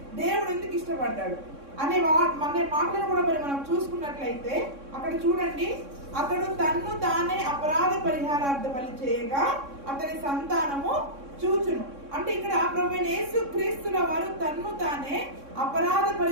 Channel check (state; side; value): late; left; 3.6 ms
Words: దేవుడు ఎందుకు ఇష్టపడ్డాడు అనే మాటలను కూడా మరి మనం చూసుకున్నట్లయితే అక్కడ చూడండి, అతడు తన్ను తానే అపరాధ పరిహారార్థ బలి చేయగా అతని సంతానము చూచును. అంటే ఇక్కడ ప్రభువైన యేసుక్రీస్తుల వారు తన్ను తానే అపరాధ